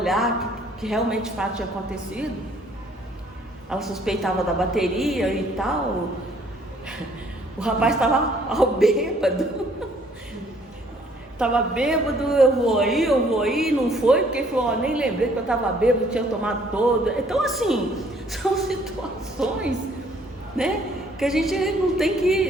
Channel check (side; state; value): both; normal; correlation 0.62